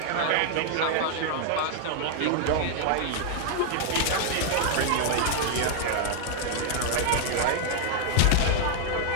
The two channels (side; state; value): both; different; correlation 0.00